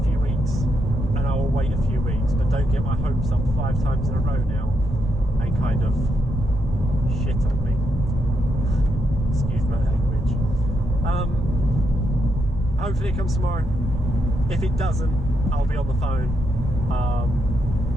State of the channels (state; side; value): normal; both; correlation 0.80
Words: few weeks, and I will wait a few weeks, but don't get my hopes up 5 times in a row now and kind of shit on me. Excuse my language. hopefully it comes tomorrow. If it doesn't, I'll be on the phone.